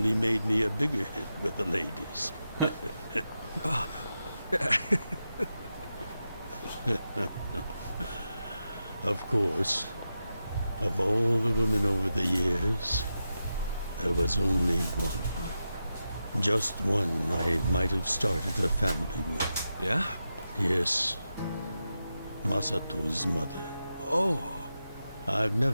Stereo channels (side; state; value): both; inverted; correlation -0.89